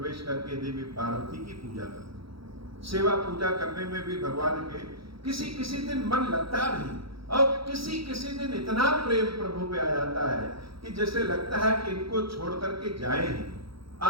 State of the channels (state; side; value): late; left; 0.75 ms